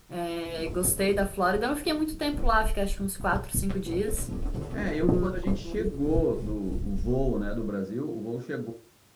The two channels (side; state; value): both; identical; correlation 1.00